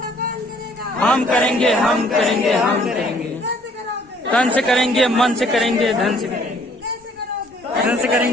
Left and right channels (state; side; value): normal; both; correlation 0.60